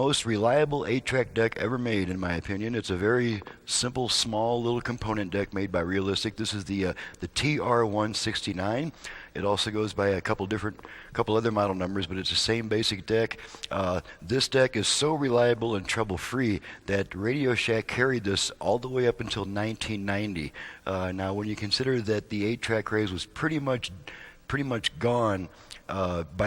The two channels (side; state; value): both; identical; correlation 1.00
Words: reliable 8-track deck ever made, in my opinion. It's a very simple, small little component deck made by Realistic. This is the TR169. It also goes by a couple other model numbers, but it's the same basic deck. This deck is so reliable and trouble-free that Radio Shack carried this all the way up until 1990. Now, when you consider that the 8-track craze was pretty much gone